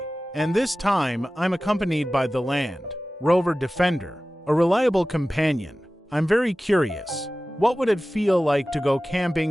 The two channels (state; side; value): normal; both; correlation 0.96